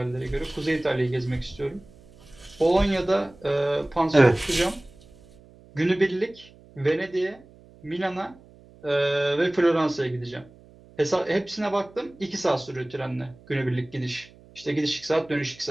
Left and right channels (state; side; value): noise; right; hum, 24 dB below the sound